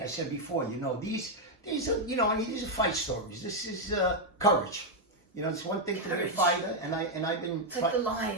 I said before, these are, these are fight stories. This is courage. It's one thing to be a fighter, and I've been. It's like the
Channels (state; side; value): normal; both; correlation 0.00